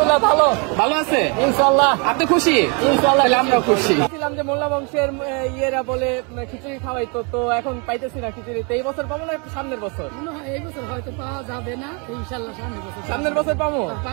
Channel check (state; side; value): quieter; left; 33.6 dB